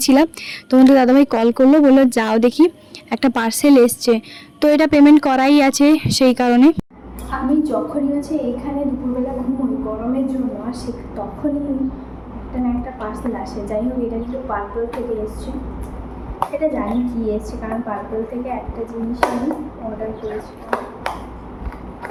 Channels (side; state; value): both; identical; correlation 1.00